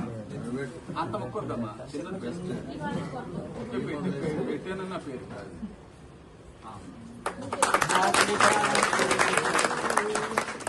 అంత మొక్కద్దమ్మా చిన్నది బెస్ట్ పెట్టానన్న పేరు కాదు.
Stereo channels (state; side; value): identical; both; correlation 1.00